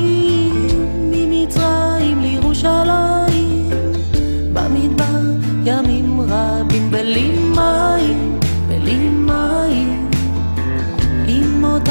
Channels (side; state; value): both; inverted; correlation -1.00